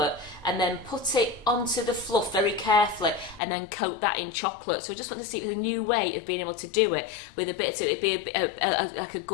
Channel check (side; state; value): right; drops out; at 3.4 s